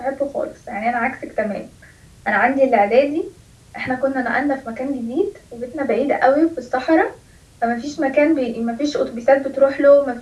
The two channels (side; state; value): both; identical; correlation 1.00